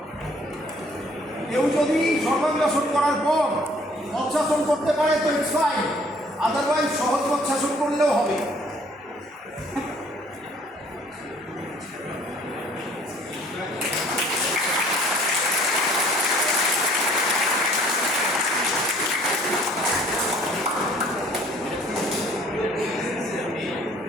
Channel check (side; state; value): both; normal; correlation 0.57